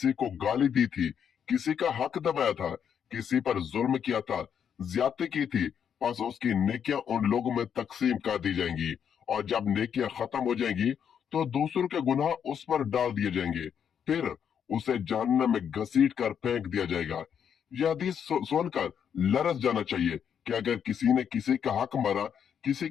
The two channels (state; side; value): quieter; right; 8.1 dB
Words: को गाली दी थी, किसी का हक दबाया था, किसी पर जुल्म किया था, ज्यादती की थी, बस उसकी नेकियां उन लोगों में तकसीम कर दी जाएंगी और जब नेकियां खत्म हो जाएंगी तो दूसरों के गुनाह उस पर डाल दिए जाएंगे, फिर उसे जहन्नम में घसीट कर फेंक दिया जाएगा। यह हदीस सुनकर लरस जाना चाहिए कि अगर किसी ने किसी का हक मारा, किसी